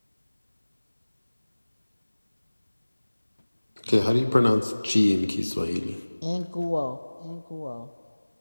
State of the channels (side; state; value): both; inverted; correlation -1.00